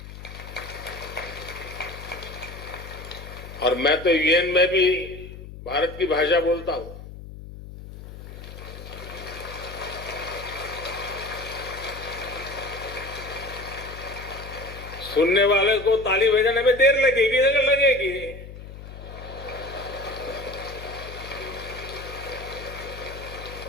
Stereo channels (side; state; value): left; noise; hum, 13 dB below the sound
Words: और मैं तो यूएन में भी भारत की भाषा बोलता हूं। सुनने वाले को ताली बजाने में देर लगेगी।